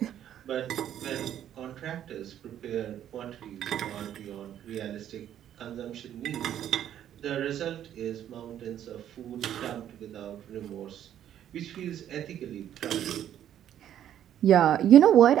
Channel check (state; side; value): quieter; left; 10.7 dB